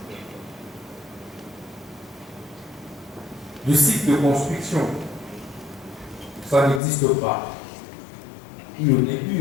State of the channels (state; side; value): drops out; right; at 6.8 s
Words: du cycle de construction. Ça n'existe pas. Et au